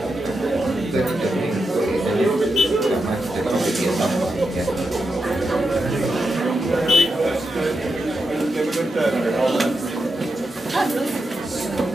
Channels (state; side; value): normal; both; correlation 0.86